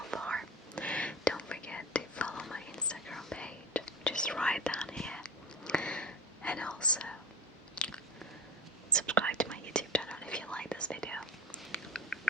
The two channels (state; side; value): normal; both; correlation 0.32